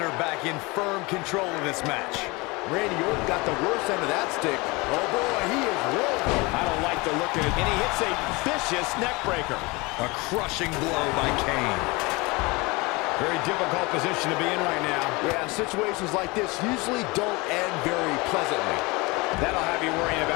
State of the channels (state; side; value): quieter; right; 24.9 dB